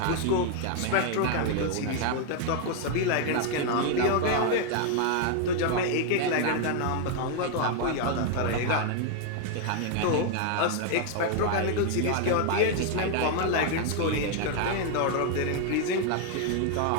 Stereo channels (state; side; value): different; both; correlation 0.00